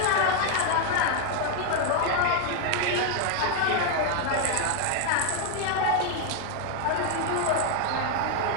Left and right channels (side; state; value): both; different; correlation 0.01